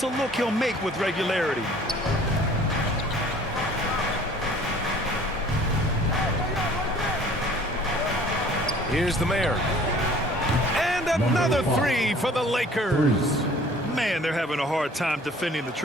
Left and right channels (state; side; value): normal; both; correlation 0.51